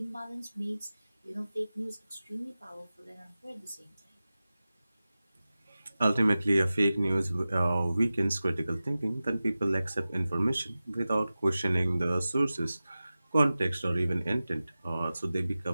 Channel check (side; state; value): both; inverted; correlation -0.95